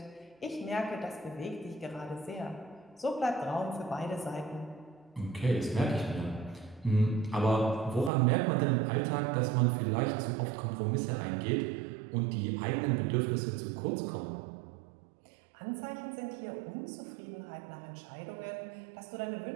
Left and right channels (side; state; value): left; drops out; at 8.1 s